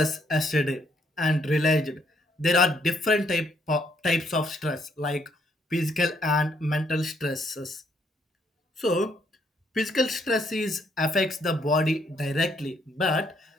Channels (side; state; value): both; normal; correlation 0.71